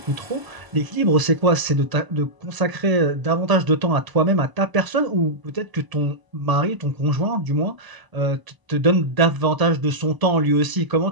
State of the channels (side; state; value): left; late; 1.0 ms